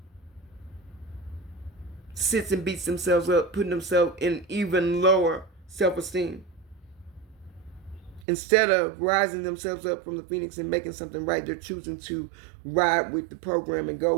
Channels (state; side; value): drops out; left; at 8.2 s